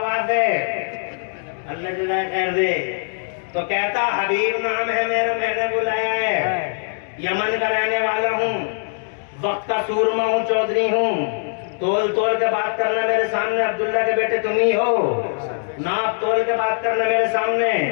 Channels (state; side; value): silent; right; digital silence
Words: है? अल्लाह जुदा कर दे। तो कहता हबीब नाम है मेरा, मैंने बुलाया है। यमन का रहने वाला हूँ, वक्त का सूरमा हूँ, चौधरी हूँ। तोल के बात करना मेरे सामने, अब्दुल्ला के बेटे तुम ही हो। नाप तोल के बात करना मेरे सामने।